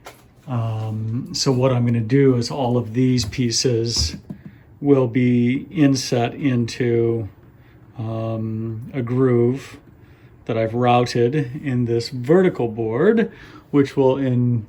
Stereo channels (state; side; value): identical; both; correlation 1.00